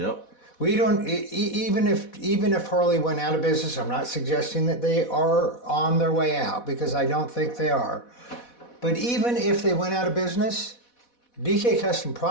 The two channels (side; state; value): right; late; 4.1 ms